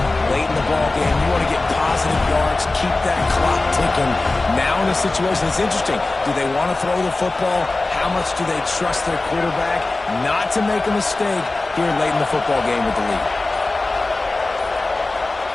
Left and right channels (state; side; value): quieter; right; 3.2 dB